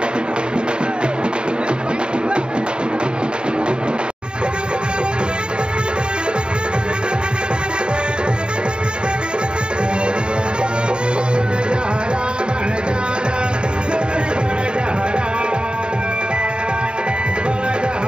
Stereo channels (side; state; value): left; late; 0.050 ms